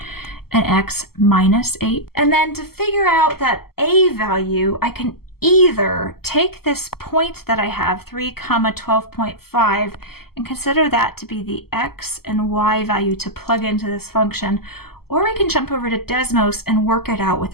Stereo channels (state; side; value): late; right; 0.95 ms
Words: and x minus 8. And then to figure out that a value, I can either take this point that I have, 3, 12.5, and consider that to be the x and y value to plug into this function, or we can jump over to Desmos and work it out with